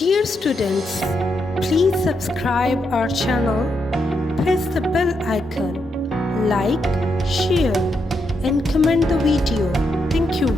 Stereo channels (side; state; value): both; normal; correlation 0.81